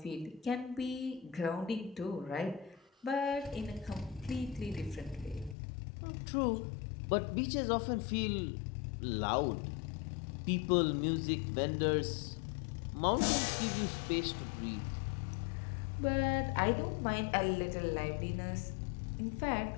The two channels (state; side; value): drops out; right; at 5.6 s